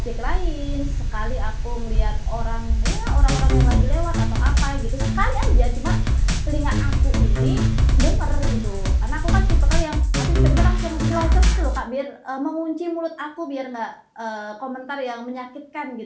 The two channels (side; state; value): both; identical; correlation 1.00